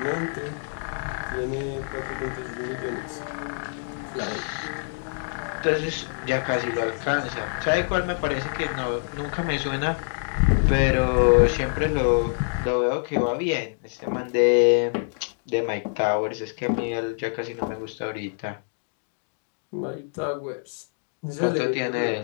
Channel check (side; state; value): right; silent; digital silence